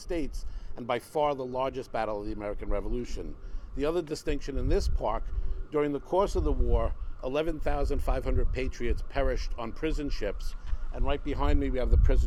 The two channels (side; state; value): both; identical; correlation 1.00